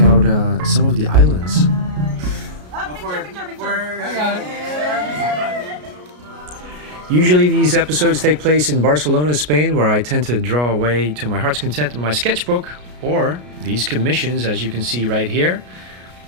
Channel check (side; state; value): left; late; 33 ms